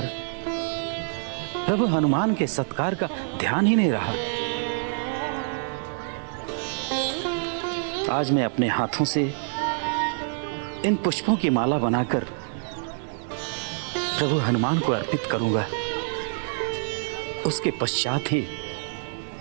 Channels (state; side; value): silent; left; 61 dB below the other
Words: प्रभु हनुमान के सत्कार का ध्यान ही नहीं रहा। आज मैं अपने हाथों से इन पुष्पों की माला बनाकर प्रभु हनुमान को अर्पित करूंगा। उसके पश्चात ही